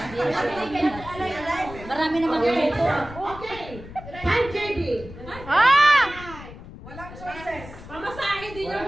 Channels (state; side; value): noise; left; rumble, 15 dB below the sound